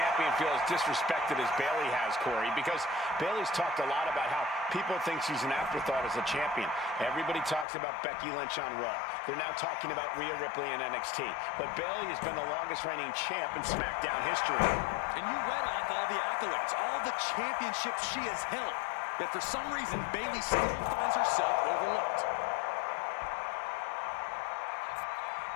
feel as disrespected as Bayley has, Corey, because Bayley's talked a lot about how people think she's an afterthought as a champion. Everybody talks about Becky Lynch on Raw. They're now talking about Rhea Ripley in NXT. But Bayley has been the longest reigning champ in SmackDown history. And you read off all the accolades, all the championships she has held. That for some reason, Bayley still finds herself overlooked.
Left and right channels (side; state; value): right; drops out; at 7.7 s